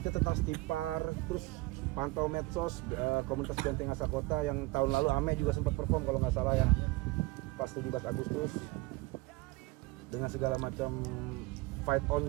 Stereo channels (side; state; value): left; quieter; 22.0 dB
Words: tentang Stipar, terus pantau medsos komunitas Benteng Asa Kota yang tahun lalu Ame juga sempat perform kalau nggak salah ya, pas 17 Agustus dengan segala macam fight